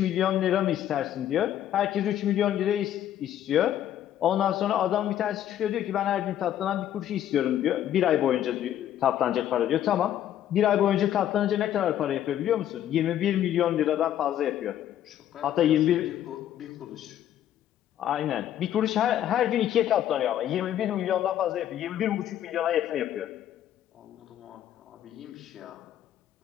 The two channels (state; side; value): quieter; right; 11.3 dB